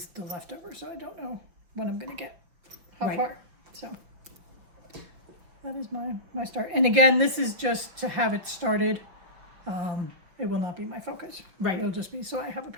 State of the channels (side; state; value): left; late; 5.7 ms